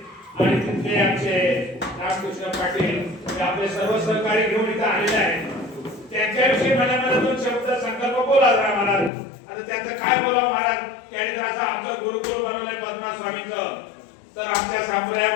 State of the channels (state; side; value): drops out; right; at 9.1 s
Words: आणि तिथले आमचे रामकृष्ण पाटील हे आपले सर्व सहकारी घेऊन इथं आलेले आहेत. त्यांच्याविषयी मला दोन शब्द संकल्प बोला जरा महाराज. आता त्यांचं काय बोलावं महाराज. त्यांनी जर असं आमचं गुरुकुल बनवलंय पद्मनाभ स्वामींचं तर आमच्या